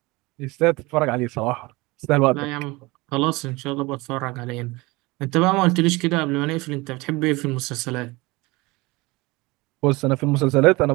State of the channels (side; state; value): left; quieter; 23.1 dB